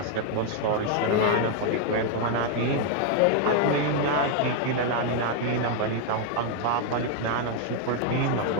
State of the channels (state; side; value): different; both; correlation 0.00